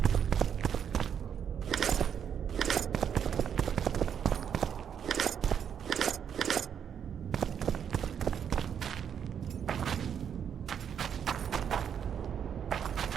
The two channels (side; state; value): left; quieter; 8.2 dB